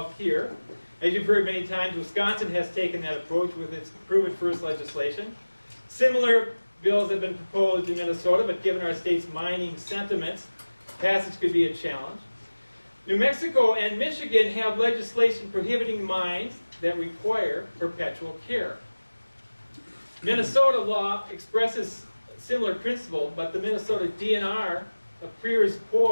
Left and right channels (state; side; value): inverted; both; correlation -1.00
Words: here. As you've heard many times, Wisconsin has taken that approach with its Prove It First legislation. Similar bills have been proposed in Minnesota, but given our state's mining sentiments, passage could be a challenge. New Mexico and Michigan have legislation prohibiting mines that require perpetual care. Minnesota law expresses a similar principle, but the Minnesota DNR appears